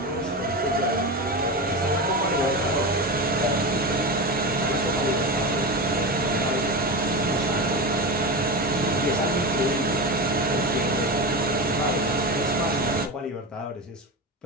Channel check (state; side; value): normal; both; correlation 0.22